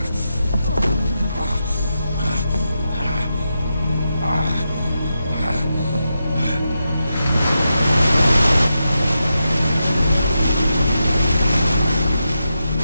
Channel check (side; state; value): both; inverted; correlation -0.87